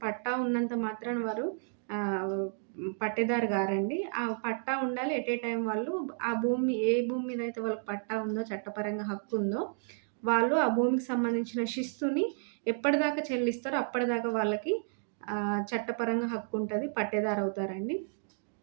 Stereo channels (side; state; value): left; silent; 57 dB below the other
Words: పట్టా ఉన్నంత మాత్రాన వారు పట్టేదారు గారండి. ఆ పట్టా ఉండాలి. ఎట్ ఏ టైమ్ వాళ్ళు ఏ భూమి మీద అయితే వాళ్ళకి పట్టా ఉందో, చట్టపరంగా హక్కుందో, వాళ్ళు ఆ భూమికి సంబంధించిన శిస్తుని ఎప్పటిదాకా చెల్లిస్తారో అప్పటిదాకా వాళ్ళకి చట్టపరంగా హక్కుంటది. పట్టేదారవుతారండి.